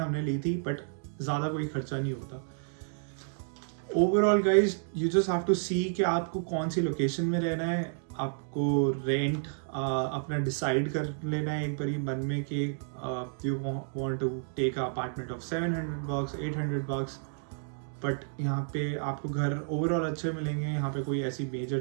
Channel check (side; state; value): left; silent; digital silence